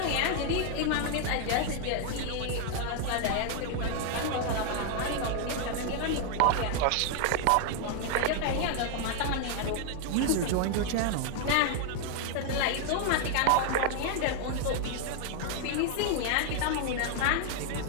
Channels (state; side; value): different; both; correlation 0.00